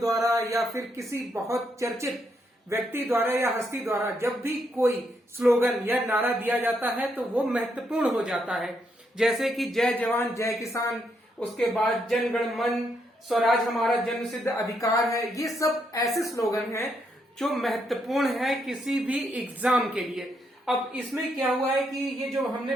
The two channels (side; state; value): both; normal; correlation 0.77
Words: या फिर किसी बहुत चर्चित व्यक्ति द्वारा या हस्ती द्वारा जब भी कोई स्लोगन या नारा दिया जाता है तो वो महत्वपूर्ण हो जाता है। जैसे कि जय जवान जय किसान, उसके बाद जन गण मन, स्वराज हमारा जन्मसिद्ध अधिकार है। ये सब ऐसे स्लोगन हैं जो महत्वपूर्ण है किसी भी एग्जाम के लिए। अब इसमें क्या हुआ है कि ये जो हमने